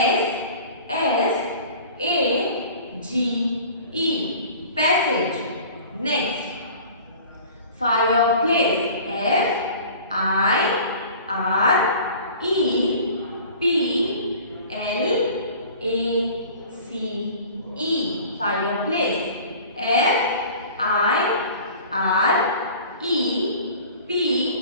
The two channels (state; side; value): inverted; both; correlation -0.44